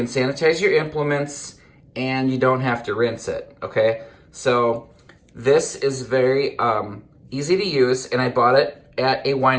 sanitize your implements and you don't have to rinse it, okay? So this is very easy to use, and I bought it at a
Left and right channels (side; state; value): both; identical; correlation 1.00